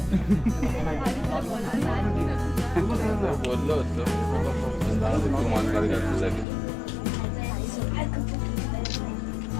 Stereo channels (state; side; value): drops out; right; at 6.5 s